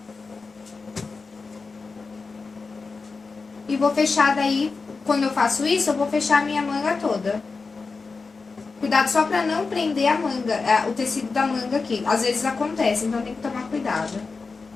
E vou fechar daí, quando eu faço isso, eu vou fechar a minha manga toda. Cuidado só pra não prender a manga, o tecido da manga aqui. Às vezes acontece, então tem que tomar cuidado.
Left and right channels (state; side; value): quieter; right; 4.4 dB